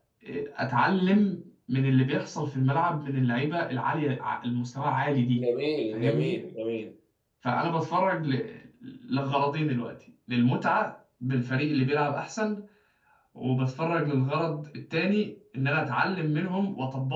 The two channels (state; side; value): identical; both; correlation 1.00